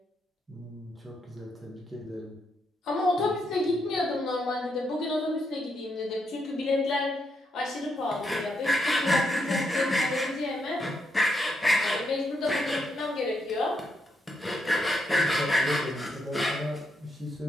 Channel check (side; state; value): both; normal; correlation 0.78